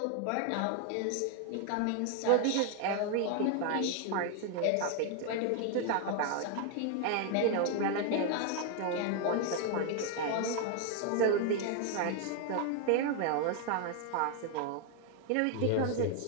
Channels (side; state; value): both; different; correlation 0.00